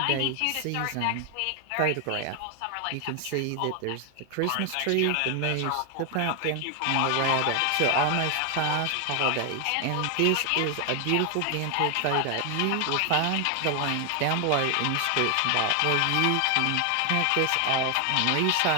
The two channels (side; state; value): both; different; correlation 0.00